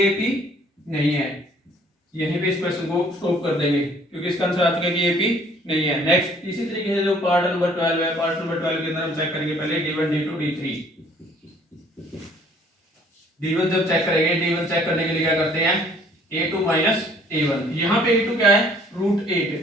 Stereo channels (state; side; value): normal; both; correlation 0.58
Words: AP नहीं है। यहीं पे इस क्वेश्चन को स्टॉप कर देंगे क्योंकि इसका आंसर आ चुका है कि AP नहीं है। नेक्स्ट इसी तरीके से जो पार्ट नंबर 12 है, पार्ट नंबर 12 के अंदर हम चेक करेंगे पहले D1 D2 D3। D1 जब चेक करेंगे, D1 चेक करने के लिए क्या करते हैं A2 माइनस A1। यहाँ पे A2 क्या है रूट